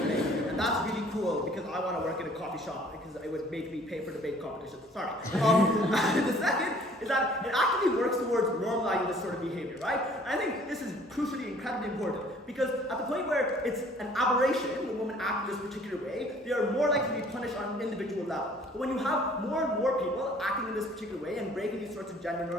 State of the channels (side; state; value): both; normal; correlation 0.55